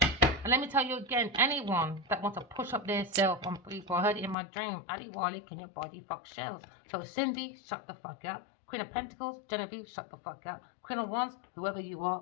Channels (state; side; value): drops out; right; at 4.4 s